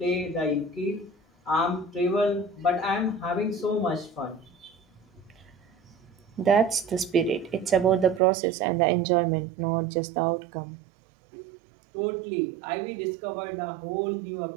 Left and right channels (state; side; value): drops out; left; at 8.2 s